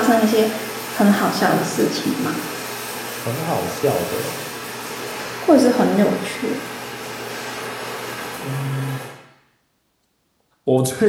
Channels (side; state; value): both; identical; correlation 1.00